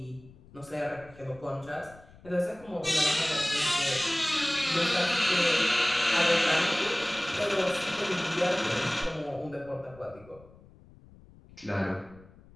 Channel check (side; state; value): left; noise; rumble, 24 dB below the sound